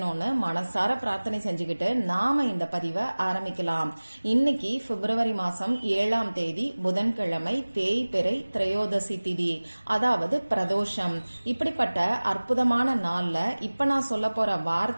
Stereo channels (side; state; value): both; inverted; correlation -1.00